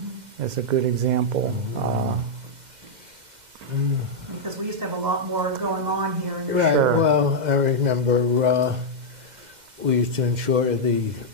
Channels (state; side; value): late; left; 2.1 ms